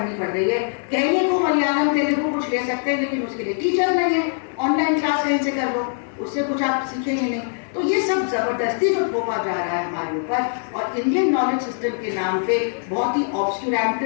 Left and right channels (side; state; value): right; silent; digital silence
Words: पड़ रही है। कहने को मलयालम तेलुगु कुछ ले सकते हैं, लेकिन उसके लिए टीचर नहीं है, ऑनलाइन क्लास कहीं से कर लो, उससे कुछ आप सीखेंगे नहीं। तो ये सब जबरदस्ती जो थोपा जा रहा है हमारे ऊपर, और इंडियन नॉलेज सिस्टम के नाम पे बहुत ही